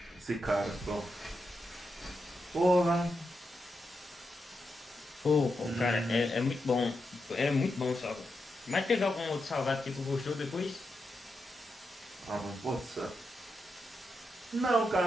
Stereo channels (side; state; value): both; normal; correlation 0.86